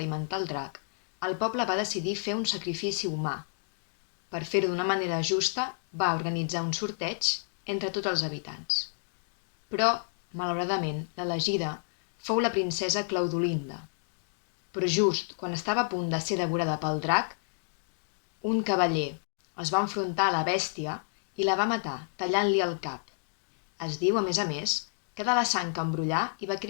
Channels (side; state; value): right; silent; digital silence